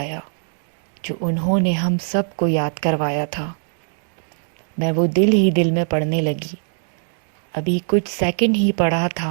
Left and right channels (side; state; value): left; silent; digital silence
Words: جو انہوں نے ہم سب کو یاد کروایا تھا۔ میں وہ دل ہی دل میں پڑھنے لگی۔ ابھی کچھ سیکنڈ ہی پڑھا